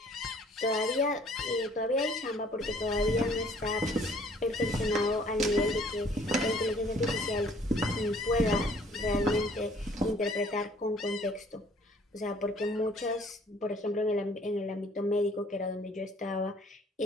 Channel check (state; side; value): normal; both; correlation 0.57